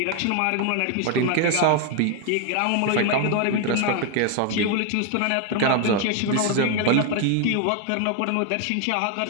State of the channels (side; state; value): both; different; correlation 0.01